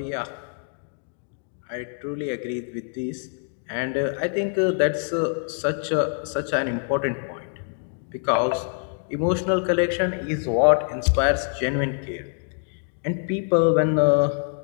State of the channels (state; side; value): silent; right; digital silence